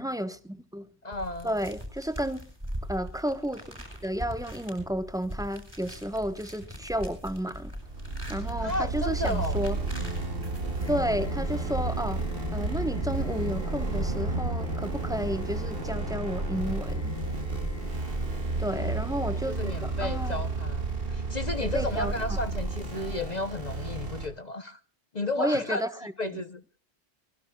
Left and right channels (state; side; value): normal; both; correlation 0.47